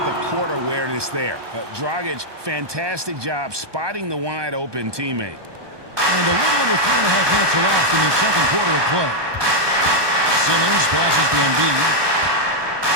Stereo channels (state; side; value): late; left; 1.2 ms